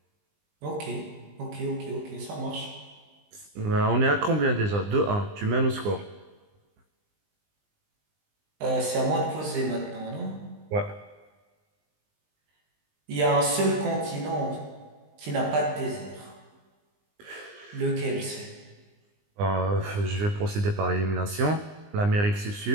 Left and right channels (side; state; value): left; late; 20 ms